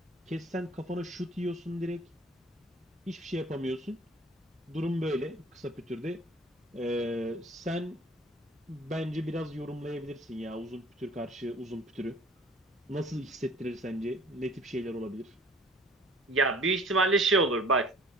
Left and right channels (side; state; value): both; normal; correlation 0.51